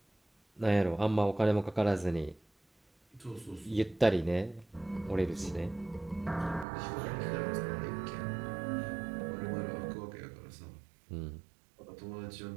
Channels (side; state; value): left; drops out; at 6.7 s